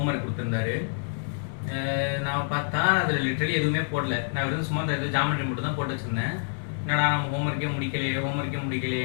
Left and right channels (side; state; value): right; silent; 60 dB below the other